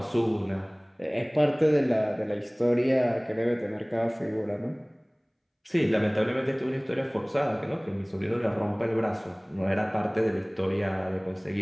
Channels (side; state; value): both; identical; correlation 1.00